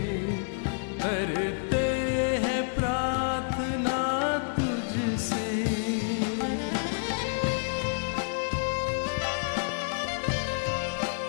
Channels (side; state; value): right; silent; digital silence